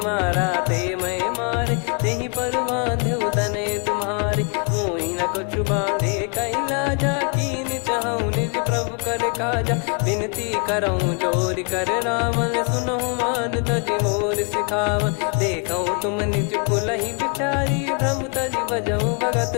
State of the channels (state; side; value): quieter; right; 39.2 dB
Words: ते मैं मारे, तेहि पर बांधो तने तुम्हारे। मोहि न कछु बांधे कैलाजा, कीन चाहूं निज प्रभु कर काजा। विनती करऊं जोरि कर रावण, सुनहु मान तजि मोर सिखावन। देखऊं तुम निज कुलहि बिचारी, भ्रम तजि बजऊं भगत